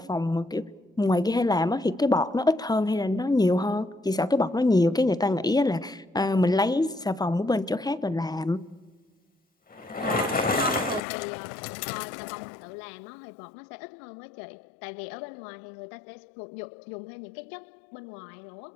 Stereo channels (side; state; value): right; drops out; at 11.0 s